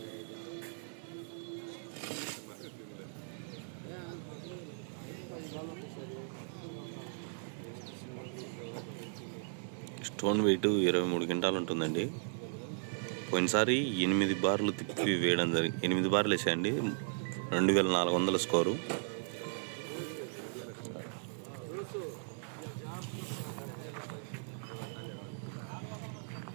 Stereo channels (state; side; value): silent; left; digital silence